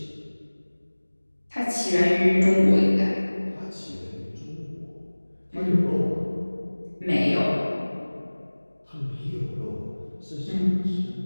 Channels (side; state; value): both; inverted; correlation -1.00